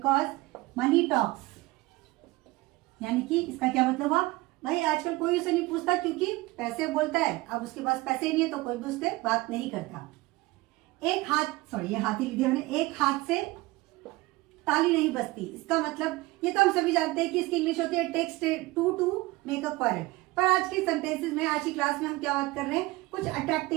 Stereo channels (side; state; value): left; quieter; 20.5 dB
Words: मनी टॉक्स, यानी कि इसका क्या मतलब हुआ, भाई आजकल कोई उसे नहीं पूछता क्योंकि पैसे बोलता है। अब उसके पास पैसे नहीं है तो कोई भी उससे बात नहीं करता। एक हाथ, सॉरी ये हाथ ही लिख दिया मैंने, एक हाथ से ताली नहीं बजती। इसका मतलब ये तो हम सभी जानते हैं कि इसकी इंग्लिश होती है takes two to make a quarrel, पर आज के सेंटेंसेस में, आज की क्लास में हम क्या बात कर रहे हैं, कुछ